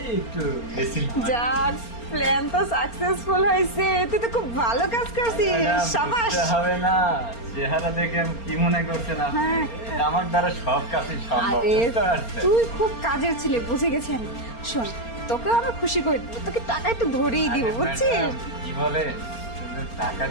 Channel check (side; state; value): right; late; 4.3 ms